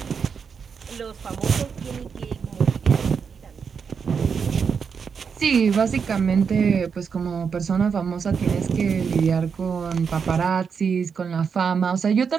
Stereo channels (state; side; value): quieter; left; 6.2 dB